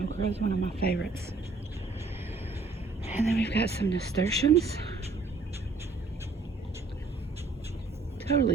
Okra is one of my favorites. And then we've got some nasturtiums.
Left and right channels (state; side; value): quieter; left; 3.8 dB